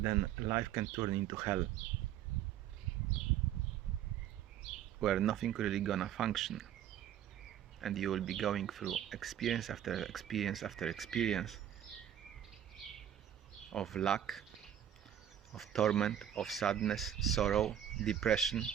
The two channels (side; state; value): left; quieter; 10.4 dB